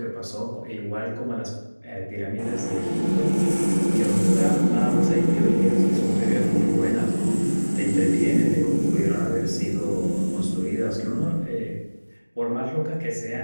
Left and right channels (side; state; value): both; inverted; correlation -1.00